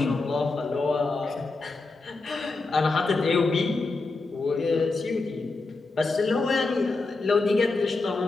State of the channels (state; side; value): quieter; right; 3.6 dB